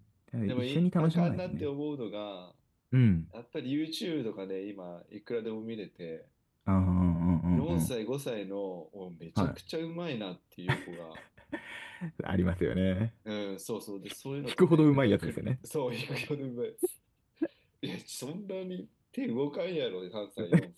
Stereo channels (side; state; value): both; identical; correlation 1.00